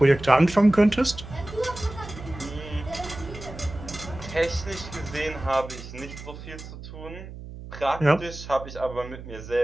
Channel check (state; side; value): noise; right; hum, 13 dB below the sound